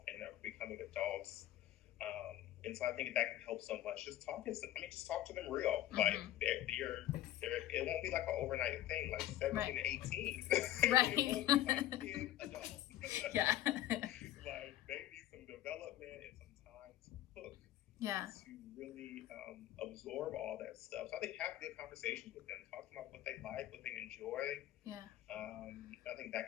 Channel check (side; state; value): right; quieter; 13.3 dB